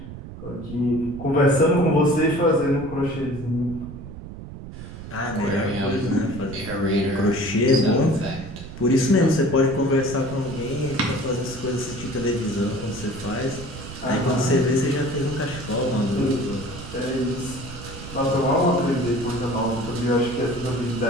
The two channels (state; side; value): noise; right; rumble, 12 dB below the sound